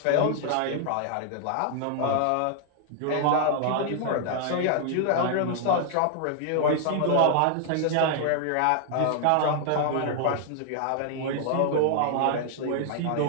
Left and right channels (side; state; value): both; different; correlation 0.00